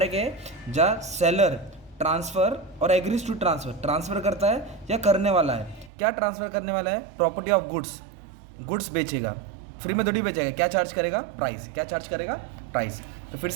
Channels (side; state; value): left; drops out; at 5.9 s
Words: है जहाँ सेलर ट्रांसफ़र और एग्रीज टू ट्रांसफ़र करता है या करने वाला है। क्या ट्रांसफ़र करने वाला है? Property of goods. गुड्स बेचेगा, फ्री में थोड़ी बेचेगा। क्या चार्ज करेगा? प्राइस। क्या चार्ज करेगा? प्राइस। तो फिर